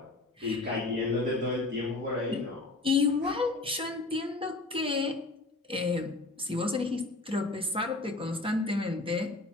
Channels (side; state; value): right; quieter; 3.1 dB